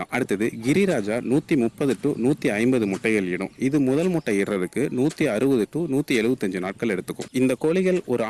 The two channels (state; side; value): identical; both; correlation 1.00